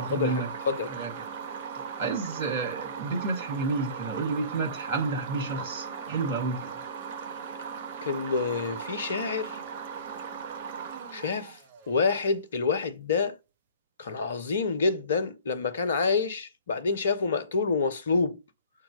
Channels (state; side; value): inverted; both; correlation -0.47